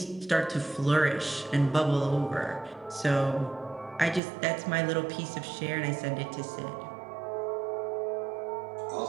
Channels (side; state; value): left; drops out; at 4.2 s